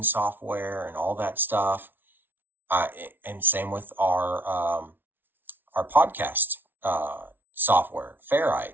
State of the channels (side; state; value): left; late; 0.098 ms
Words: software and all that stuff. And same with our podcast software,